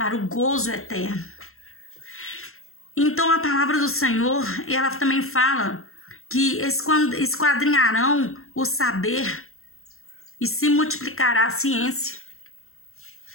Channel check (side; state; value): right; late; 0.62 ms